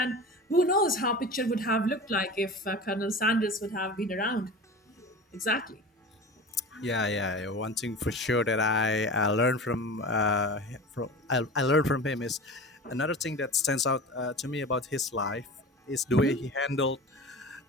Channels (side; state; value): both; normal; correlation 0.33